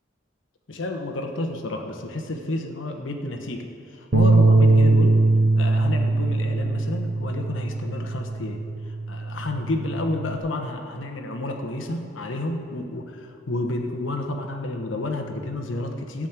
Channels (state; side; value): normal; both; correlation 0.79